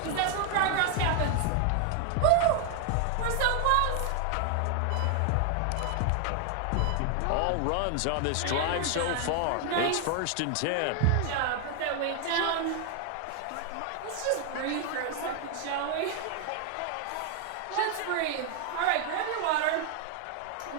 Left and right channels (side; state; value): both; different; correlation 0.00